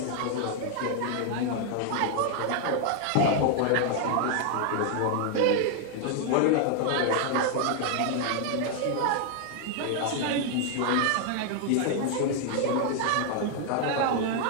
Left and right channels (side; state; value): both; different; correlation 0.00